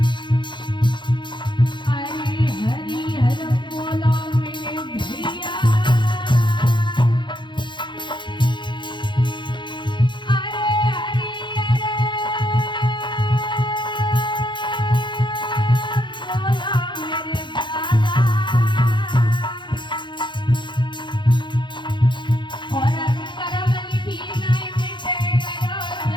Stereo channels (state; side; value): late; right; 0.23 ms